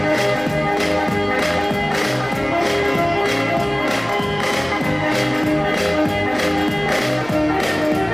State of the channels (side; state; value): right; noise; hum, 19 dB below the sound